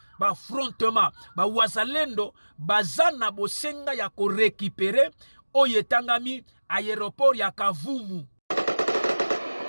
Ba affrontement ba wazalendo bazana bosenga ya ko récupérer oyetangami aéroport ya Kavumu.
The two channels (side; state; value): both; inverted; correlation -1.00